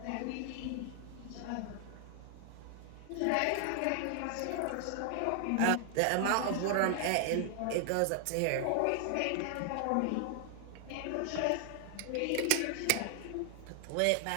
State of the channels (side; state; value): both; different; correlation 0.00